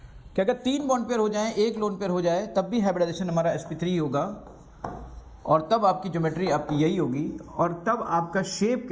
कि अगर 3 बॉन्ड पेयर हो जाए, 1 लोन पेयर हो जाए, तब भी हाइब्रिडाइजेशन हमारा sp3 होगा और तब आपकी ज्योमेट्री आपकी यही होगी। और तब आपका शेप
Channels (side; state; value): both; identical; correlation 1.00